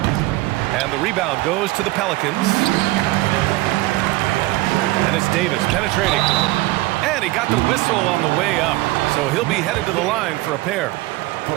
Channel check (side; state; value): left; quieter; 19.3 dB